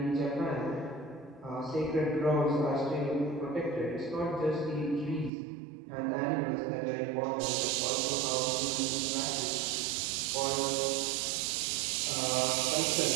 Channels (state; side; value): drops out; left; at 5.3 s